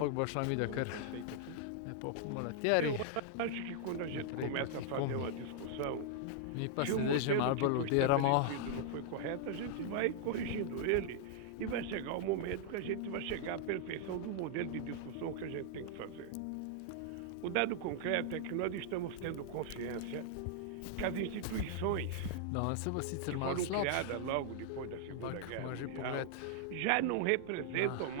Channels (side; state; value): both; different; correlation -0.01